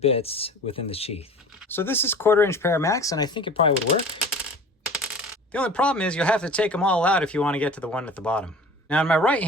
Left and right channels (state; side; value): normal; both; correlation 0.41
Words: within the sheath. So this is 1/4" Paramax, and I think it probably would work. The only problem is you'll have to take them all out if you want to get to the one at the bottom. Now in my right